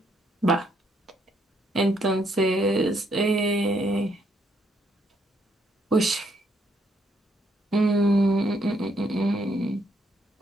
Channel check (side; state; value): both; normal; correlation 0.73